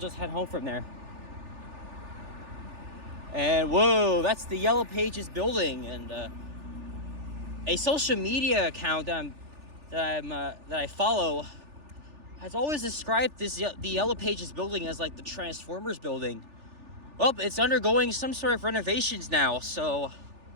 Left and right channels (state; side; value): late; left; 3.4 ms